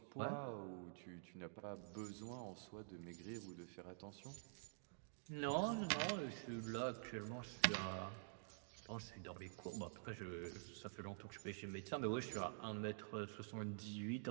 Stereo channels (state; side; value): silent; left; digital silence